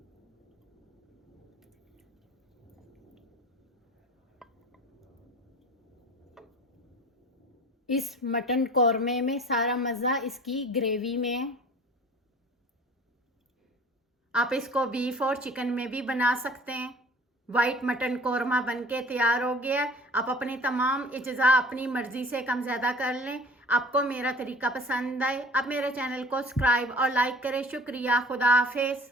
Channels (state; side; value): normal; both; correlation 0.45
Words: इस मटन कौरमे में सारा मज़ा इसकी ग्रेवी में है। आप इसको बीफ और चिकन में भी बना सकते हैं। वाइट मटन कौरमा बनके तैयार हो गया। आप अपनी तमाम इज्जा अपनी मर्ज़ी से कम ज़्यादा कर लें। आपको मेरा तरीका पसंद आए, आप मेरे चैनल को सब्सक्राइब और लाइक करें। शुक्रिया। खुदा हाफिज़।